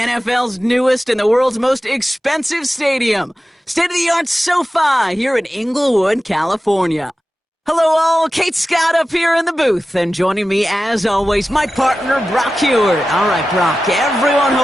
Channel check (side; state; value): both; normal; correlation 0.94